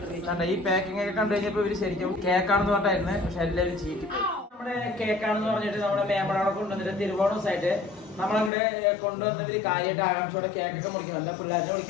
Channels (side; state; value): right; drops out; at 8.5 s